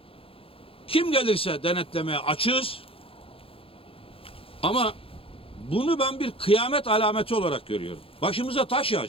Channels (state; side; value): late; right; 0.27 ms